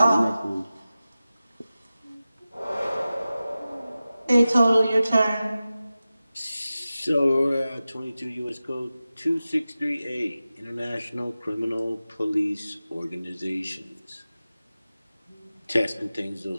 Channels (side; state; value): both; inverted; correlation -0.95